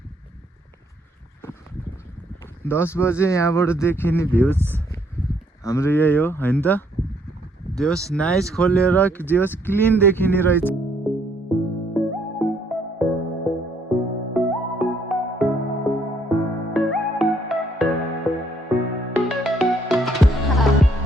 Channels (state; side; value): normal; both; correlation 0.68